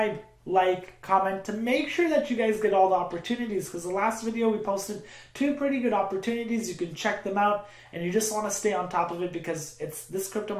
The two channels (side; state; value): both; identical; correlation 1.00